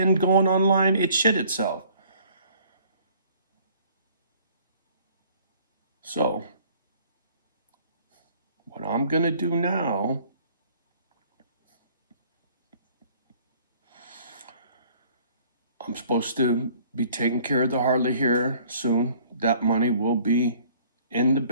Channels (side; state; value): both; inverted; correlation -0.56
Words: going online, it shit itself. So what I'm gonna do now, I'm supposed to be taking care of the Harley here soon. That money will be in the